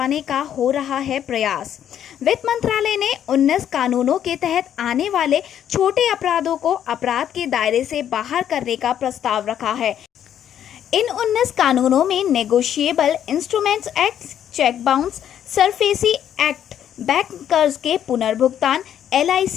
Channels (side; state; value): right; quieter; 10.0 dB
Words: का हो रहा है प्रयास। वित्त मंत्रालय ने 19 कानूनों के तहत आने वाले छोटे अपराधों को अपराध के दायरे से बाहर करने का प्रस्ताव रखा है। इन 19 कानूनों में negotiable instruments act, cheque bounce, SARFAESI act, bank कर्ज के पुनर्भुगतान,